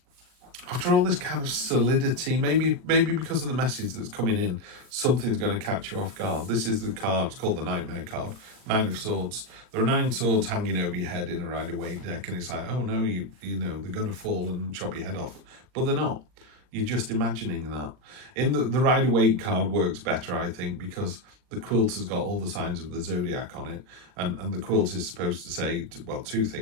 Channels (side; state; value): left; late; 40 ms